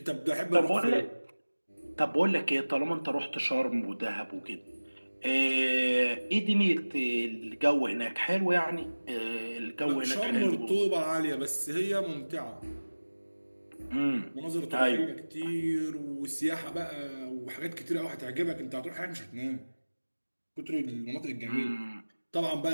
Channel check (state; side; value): inverted; both; correlation -1.00